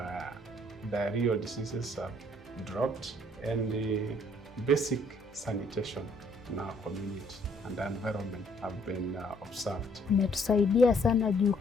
diarrheal diseases have dropped, and the basic sanitation in our community and the environment have been observed. Imetusaidia sana juu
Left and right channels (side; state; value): both; normal; correlation 0.64